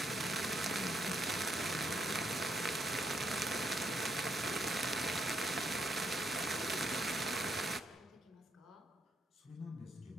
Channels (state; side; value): normal; both; correlation 0.76